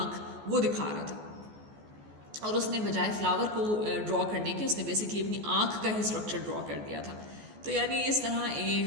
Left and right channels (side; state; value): left; late; 14 ms